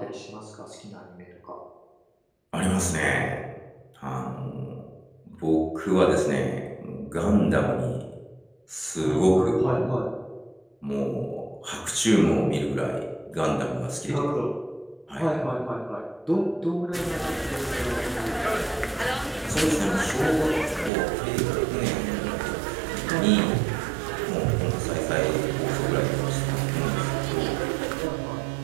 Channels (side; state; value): left; drops out; at 20.9 s